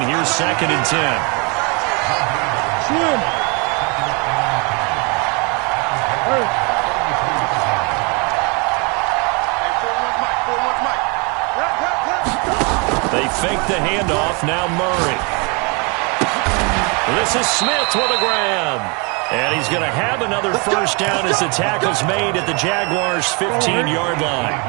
here's 2nd and 10. They fake the handoff. Now Murray. This is Smith with a grab. And he's going to have another 1st down as the tackle's made at the Jaguars' 15-yard line.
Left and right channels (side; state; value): left; quieter; 31.2 dB